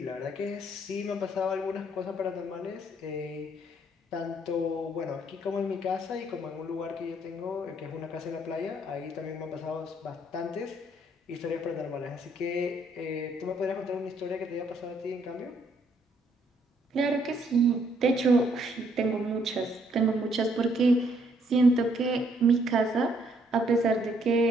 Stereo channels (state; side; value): normal; both; correlation 0.68